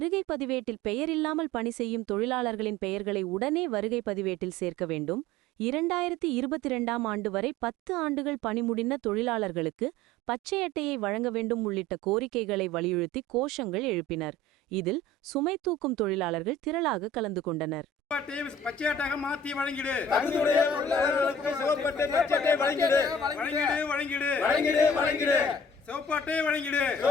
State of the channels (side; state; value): both; normal; correlation 0.44